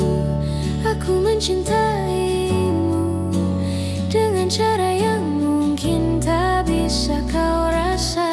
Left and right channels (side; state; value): both; identical; correlation 1.00